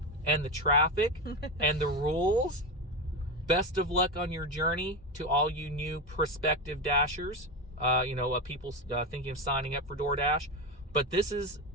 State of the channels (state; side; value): normal; both; correlation 0.17